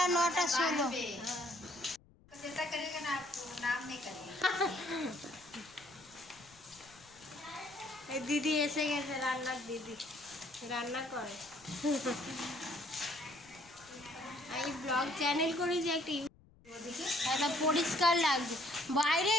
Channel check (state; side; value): noise; left; rumble, 27 dB below the sound